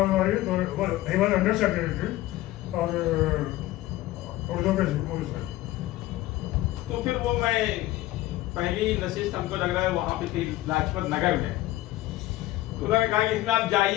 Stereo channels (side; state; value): right; quieter; 16.6 dB